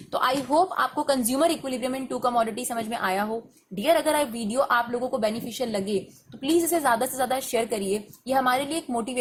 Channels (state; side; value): identical; both; correlation 1.00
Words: तो आई होप आपको consumer equilibrium in two commodity समझ में आया हो। डियर, अगर वीडियो आप लोगों को बेनिफिशियल लगे तो प्लीज इसे ज्यादा से ज्यादा शेयर करिए। ये हमारे लिए एक